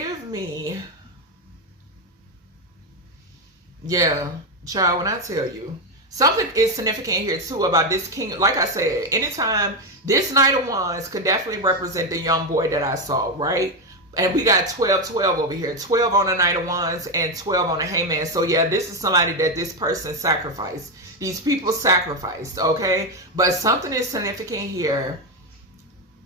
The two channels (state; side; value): normal; both; correlation 0.08